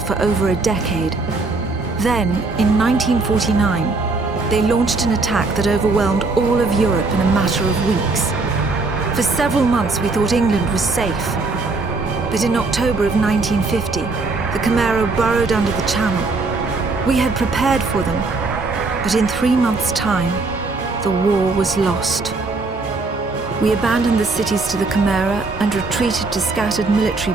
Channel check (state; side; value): quieter; left; 3.7 dB